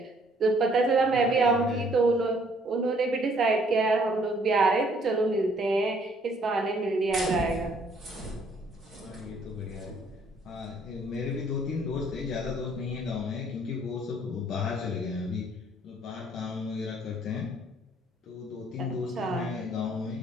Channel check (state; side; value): normal; both; correlation 0.63